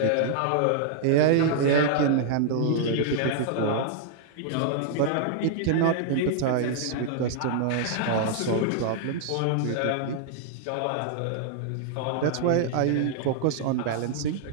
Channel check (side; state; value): both; different; correlation -0.01